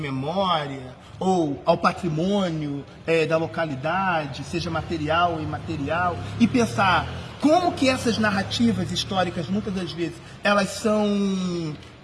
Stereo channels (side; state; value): both; identical; correlation 1.00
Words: ou ao patrimônio da localidade, seja material ou imaterial, e pensar como que essas narrativas históricas, muitas das vezes, elas são